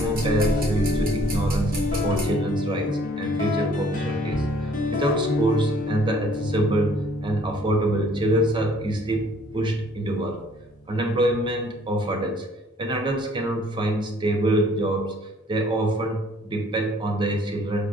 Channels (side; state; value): both; normal; correlation 0.59